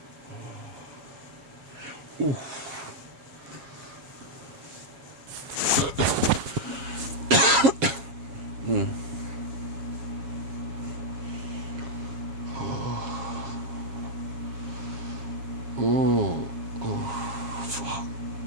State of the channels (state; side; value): late; left; 7.3 ms